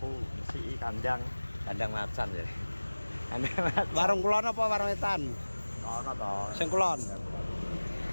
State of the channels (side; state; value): both; inverted; correlation -1.00